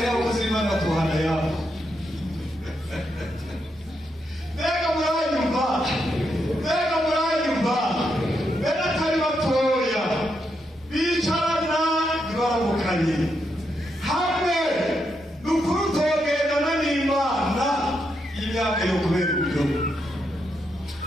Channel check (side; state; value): both; normal; correlation 0.81